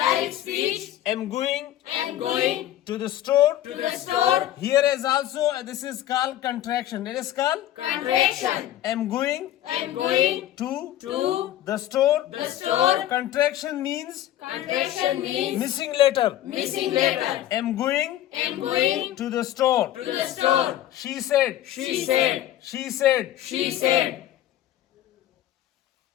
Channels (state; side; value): quieter; right; 12.9 dB